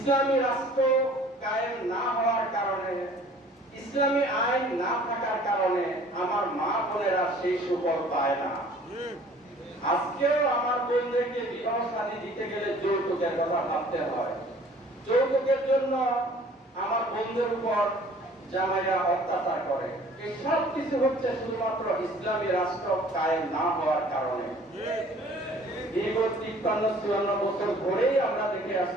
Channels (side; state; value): both; normal; correlation 0.52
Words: রাষ্ট্র কায়েম না হওয়ার কারণে, ইসলামী আইন না থাকার কারণে আমার মা বোনেরা সেই সুফল পায় না। আজকেও আমার বোনদেরকে বিবাহ শাদী দিতে গেলে যৌতুকের কথা ভাবতে হয়। যৌতুকের জন্য আমার বোনদের উপর জামাইরা অত্যাচার করে। এই সব কিছু হচ্ছে শুধুমাত্র ইসলামী রাষ্ট্র কায়েম না হওয়ার কারণে। দীর্ঘ 53-54 বছর ধরেই আমরা দেখে